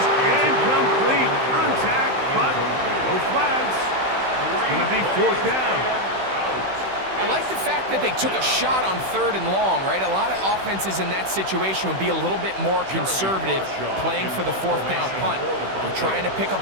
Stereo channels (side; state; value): left; late; 16 ms